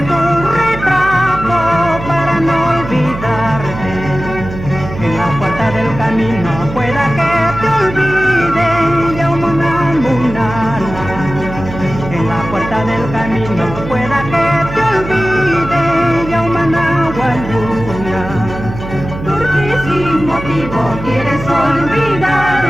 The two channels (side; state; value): right; noise; hum, 10 dB below the sound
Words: tu retrato para no olvidarte. En la puerta del camino pueda que te olvide ya una munana. En la puerta del camino pueda que te olvide ya una nahualuna. Porque sin motivo quieres